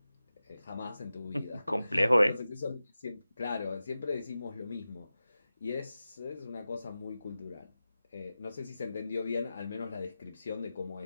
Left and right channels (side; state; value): both; inverted; correlation -0.94